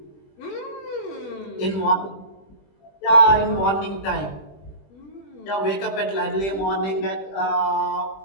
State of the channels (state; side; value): late; right; 20 ms